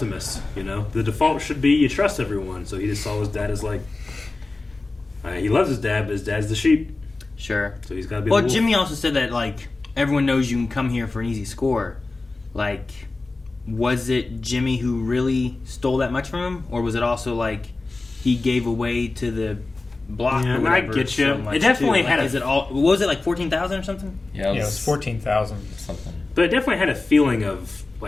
you know? The default should be you trust everyone. So he just saw his dad as, like, he loves his dad, but his dad's the sheep. Sure. So he's got to be Well, the wolf. Jimmy also said that, like, everyone knows you can come here for an easy score. Like, was it Jimmy who really stole that much from him? Or was it also, like, he gave away to the block Yeah, or I whatever? get you. So much It definitely too? had Like, a- is it all? What was it, like 14,000 or something? Yeah, it was 14,000. Something. But it definitely had a feeling of,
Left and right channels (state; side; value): quieter; right; 3.4 dB